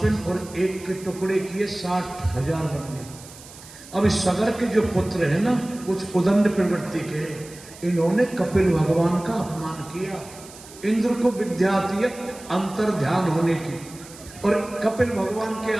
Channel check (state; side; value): noise; right; hiss, 18 dB below the sound